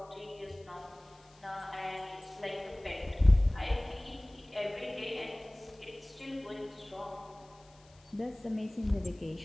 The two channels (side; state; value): left; noise; hiss, 29 dB below the sound